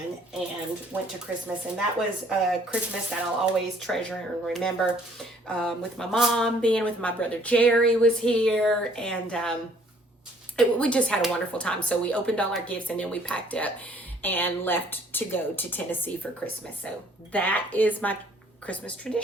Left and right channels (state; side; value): normal; both; correlation 0.60